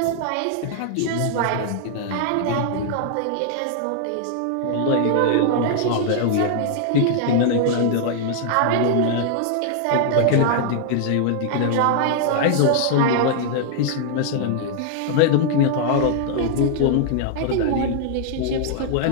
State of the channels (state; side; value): different; both; correlation -0.01